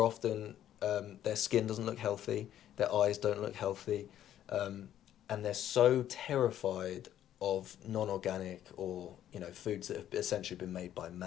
often, their skin doesn't look healthy, their eyes don't look healthy, and they're so terrified of non-organic or foods that have essentially been made by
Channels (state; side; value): quieter; right; 11.4 dB